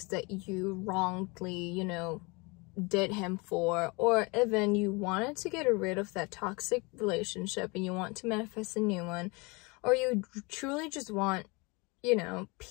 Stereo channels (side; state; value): right; quieter; 27.5 dB